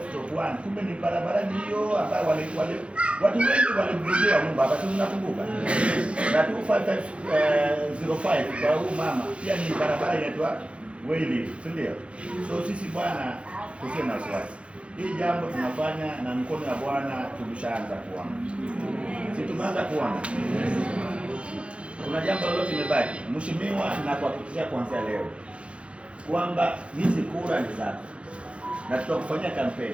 kumbe ni barabara hiyo ambayo watu wengi walimrudia nyumba hapa, tunakumbuka. Na 25505 kwa huyu mama pia ni barabara inaitwa Wayli, si ndio? So sisi bwana tusiwe na wasiwasi. Hii jambo tunafanya na mkono wa Bwana tumeshaanza kuona. Si tumeanza kuona. Kuna jambo lolote limebaki. Mheshimiwa, na kuhakikishia kuanzia leo kwamba hizi kura ni zako. Na tutakufanyia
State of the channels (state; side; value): late; left; 0.060 ms